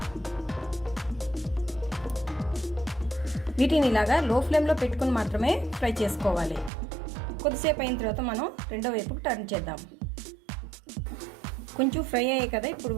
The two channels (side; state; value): left; drops out; at 6.7 s